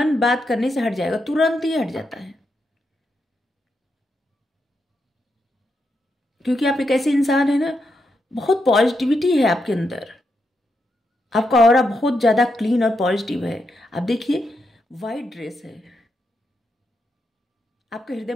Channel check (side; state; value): both; normal; correlation 0.83